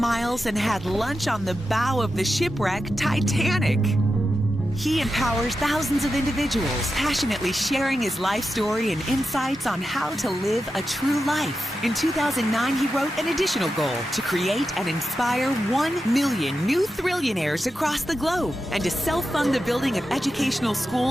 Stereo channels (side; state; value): both; normal; correlation 0.90